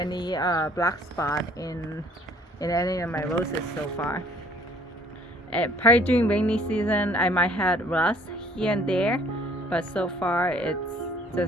black spot in any of my roses so far. Probably during rainy season I might have rust here and there, but so far it's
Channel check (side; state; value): both; normal; correlation 0.57